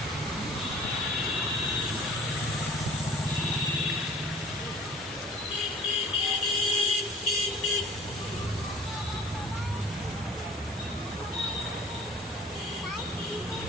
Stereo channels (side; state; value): both; normal; correlation 0.47